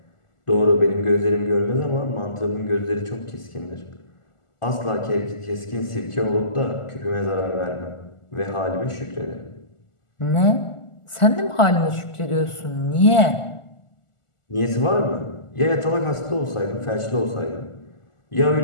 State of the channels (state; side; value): late; right; 1.4 ms